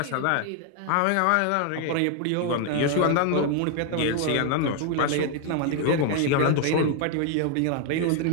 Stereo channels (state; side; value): different; both; correlation 0.01